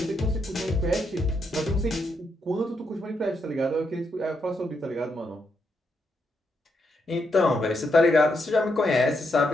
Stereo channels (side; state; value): both; normal; correlation 0.80